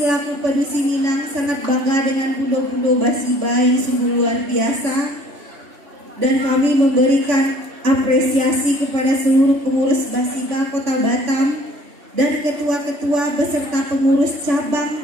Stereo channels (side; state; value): left; late; 3.5 ms